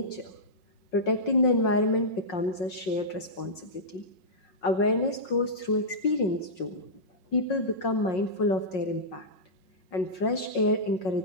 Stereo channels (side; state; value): right; late; 5.5 ms